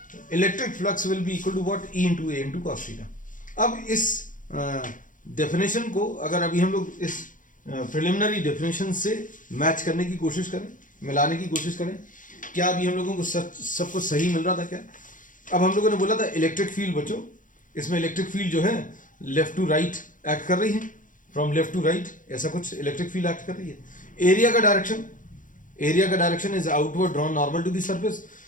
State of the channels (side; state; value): right; late; 0.38 ms